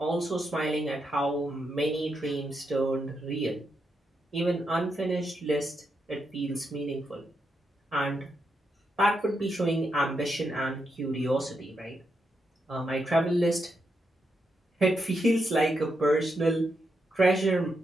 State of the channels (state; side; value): normal; both; correlation 0.82